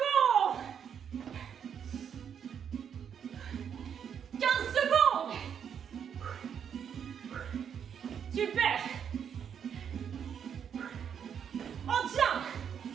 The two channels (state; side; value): quieter; left; 8.0 dB